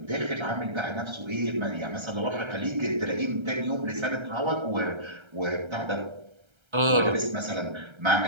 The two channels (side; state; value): left; late; 1.3 ms